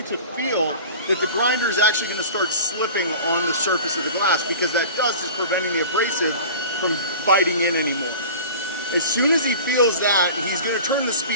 to feel that the grinder is actually going to start slipping on the surface of the glass because that dust is preventing the abrasive from biting in anymore. As soon as he feels that, he's going to turn the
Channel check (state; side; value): inverted; both; correlation -0.38